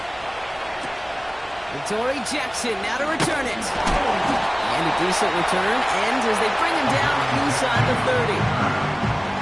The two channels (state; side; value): noise; right; hum, 25 dB below the sound